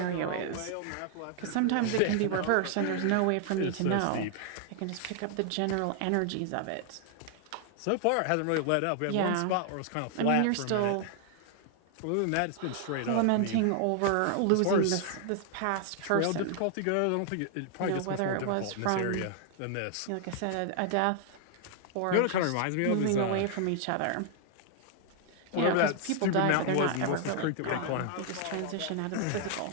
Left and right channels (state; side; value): different; both; correlation 0.00